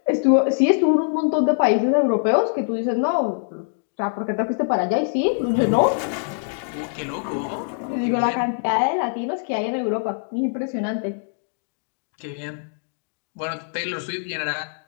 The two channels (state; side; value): silent; right; digital silence